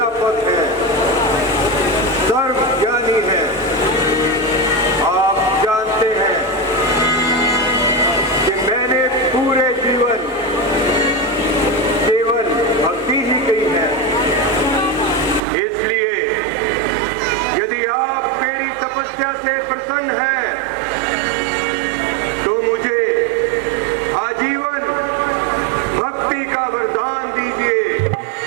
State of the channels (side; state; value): left; drops out; at 15.4 s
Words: है, सर्वज्ञानी है। आप जानते हैं कि मैंने पूरे जीवन केवल भक्ति ही की है। इसलिए यदि आप मेरी तपस्या से प्रसन्न हैं तो मुझे आजीवन भक्ति का वरदान दीजिए।